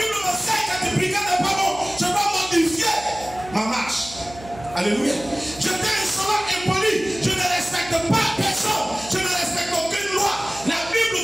m'enseigne que être brigand n'est pas bon. Je dois modifier ma marche. Alléluia. J'étais insolent, impoli. Je ne respecte pas personne. Je ne respecte aucune loi. La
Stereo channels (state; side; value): noise; right; hum, 18 dB below the sound